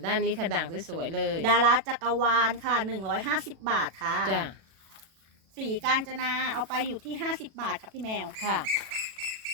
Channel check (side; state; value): left; late; 36 ms